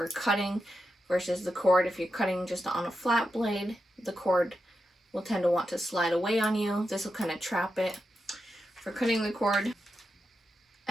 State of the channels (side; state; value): both; normal; correlation 0.88